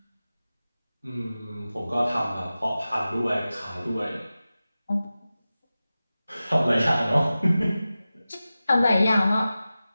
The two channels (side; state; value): both; inverted; correlation -0.95